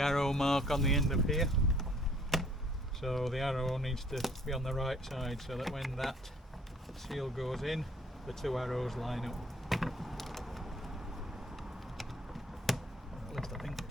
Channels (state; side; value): normal; both; correlation 0.59